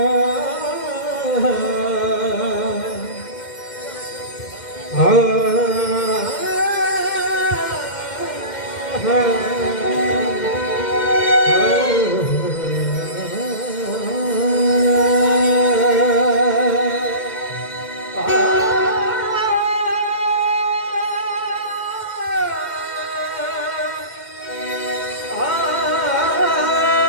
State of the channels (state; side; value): late; right; 2.1 ms